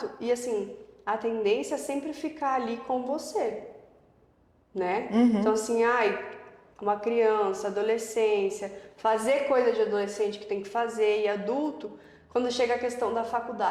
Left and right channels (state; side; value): identical; both; correlation 1.00